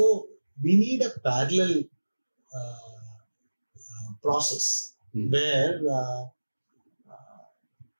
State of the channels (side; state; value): both; inverted; correlation -1.00